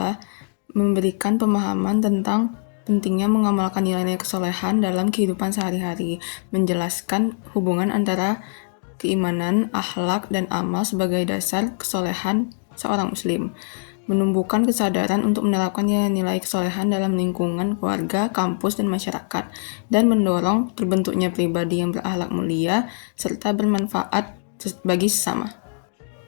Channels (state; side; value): silent; right; digital silence